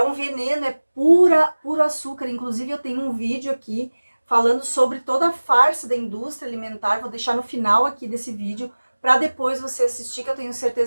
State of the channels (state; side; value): inverted; both; correlation -1.00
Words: um veneno, é puro açúcar. Inclusive eu tenho um vídeo aqui falando sobre toda a farsa da indústria alimentar. Vou deixar no final aqui desse vídeo para depois você assistir, que eu tenho